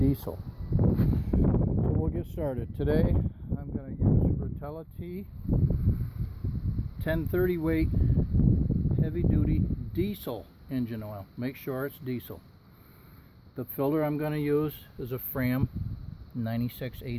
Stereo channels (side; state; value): both; identical; correlation 1.00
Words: So we'll get started. Today I'm going to use Rotella T 1030 weight heavy duty diesel engine oil. Make sure it's diesel. The filter I'm going to use is a Fram